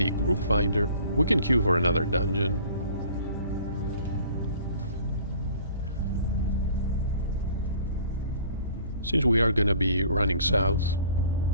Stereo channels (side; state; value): both; inverted; correlation -0.50